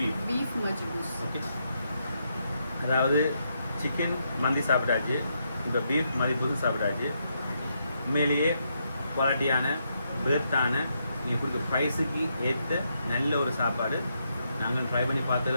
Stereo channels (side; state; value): both; inverted; correlation -0.80